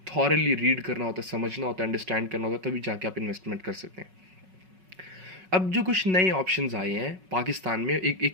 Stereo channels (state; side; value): late; left; 5.4 ms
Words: थॉरली रीड करना होता है, समझना होता है, अंडरस्टैंड करना होता है, तभी जाके आप इन्वेस्टमेंट कर सकते हैं। अब जो कुछ नए ऑप्शंस आए हैं पाकिस्तान में, एक